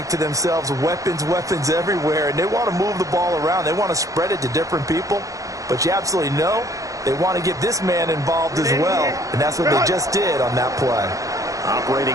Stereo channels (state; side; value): late; left; 0.16 ms